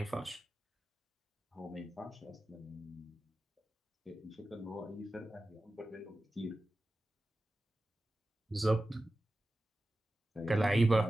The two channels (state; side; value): normal; both; correlation 0.94